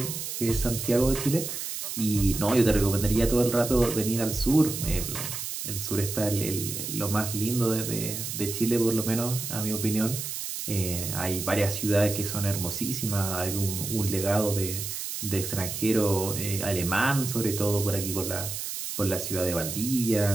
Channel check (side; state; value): right; noise; hiss, 5 dB below the sound